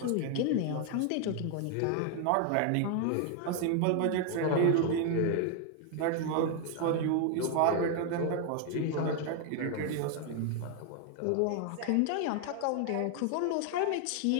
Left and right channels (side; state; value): both; different; correlation 0.00